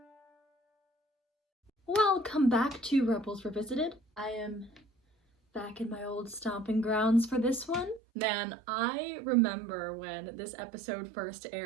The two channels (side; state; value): left; drops out; at 8.0 s